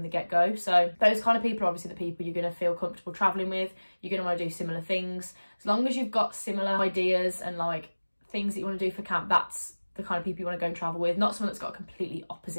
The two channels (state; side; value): inverted; both; correlation -1.00